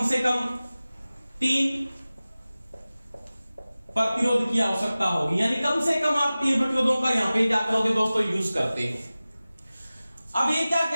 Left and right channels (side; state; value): both; inverted; correlation -0.97